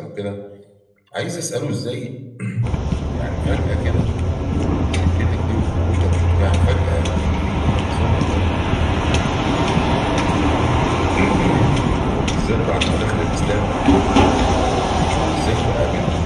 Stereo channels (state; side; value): identical; both; correlation 1.00